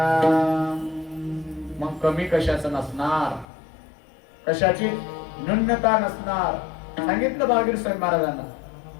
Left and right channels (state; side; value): drops out; right; at 3.5 s